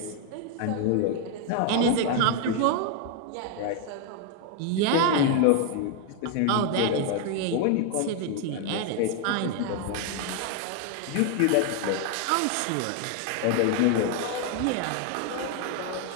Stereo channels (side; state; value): both; different; correlation 0.00